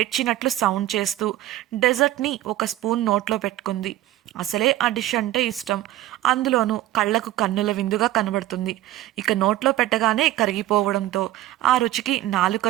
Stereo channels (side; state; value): left; quieter; 15.0 dB